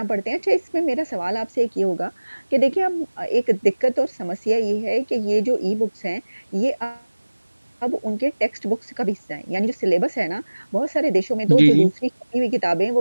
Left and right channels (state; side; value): inverted; both; correlation -1.00